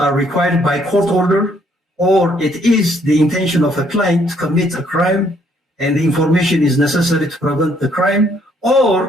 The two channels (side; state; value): both; normal; correlation 0.67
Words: are required by court order or it is the intention of a client to commit a crime and the information is necessary to prevent the crime,